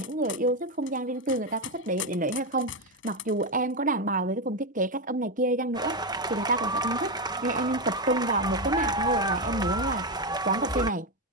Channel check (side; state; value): both; normal; correlation 0.09